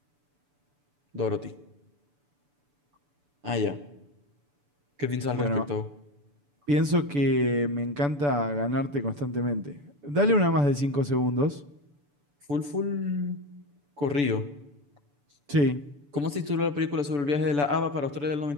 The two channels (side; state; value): left; late; 6.9 ms